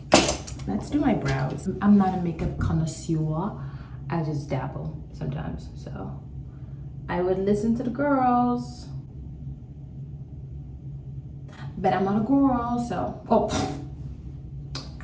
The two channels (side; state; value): both; identical; correlation 1.00